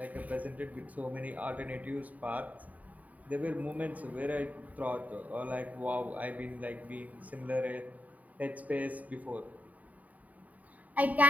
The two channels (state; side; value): late; left; 0.072 ms